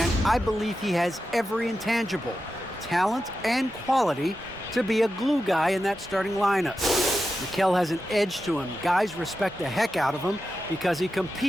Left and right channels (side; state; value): both; normal; correlation 0.91